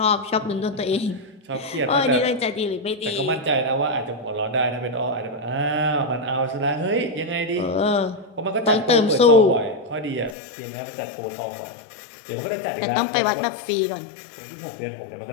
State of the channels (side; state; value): right; drops out; at 10.4 s